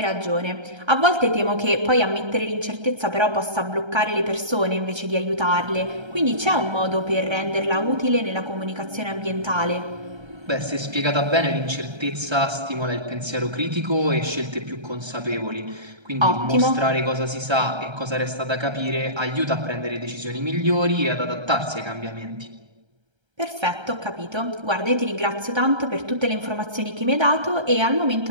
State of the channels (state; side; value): late; left; 1.3 ms